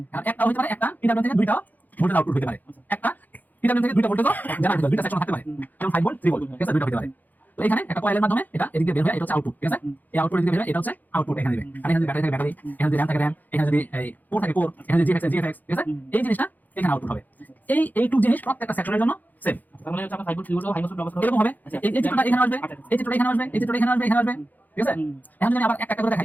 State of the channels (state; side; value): late; right; 0.083 ms